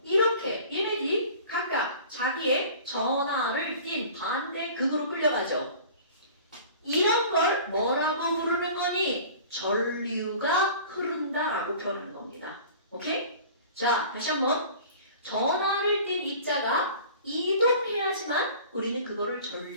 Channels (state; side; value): inverted; both; correlation -0.43